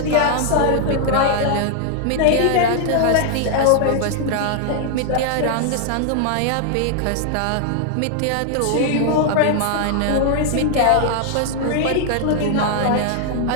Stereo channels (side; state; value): both; different; correlation 0.00